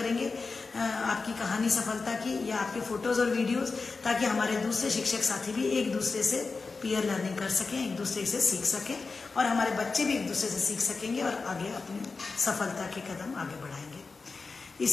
आपकी कहानी सफलता की या आपके फोटोज और वीडियोस, ताकि हमारे दूसरे शिक्षक साथी भी एक दूसरे से पीयर लर्निंग कर सकें, एक दूसरे से सीख सकें, और हमारे बच्चे भी एक दूसरे से सीख सकेंगे और आगे अपनी सफलता के कदम आगे बढ़ाएंगे।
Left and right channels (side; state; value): right; quieter; 4.3 dB